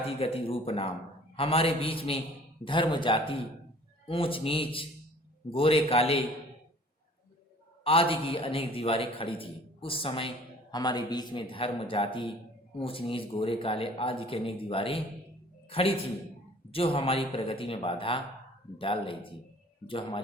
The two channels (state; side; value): normal; both; correlation 0.51